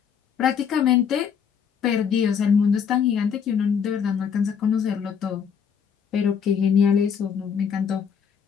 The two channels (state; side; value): quieter; right; 7.2 dB